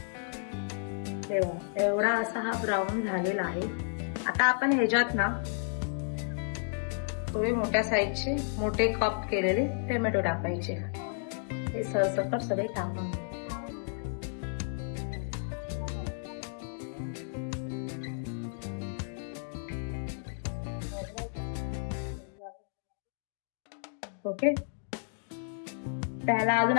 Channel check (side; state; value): right; silent; digital silence